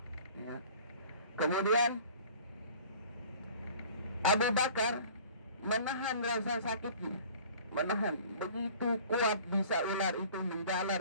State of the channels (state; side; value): inverted; both; correlation -0.47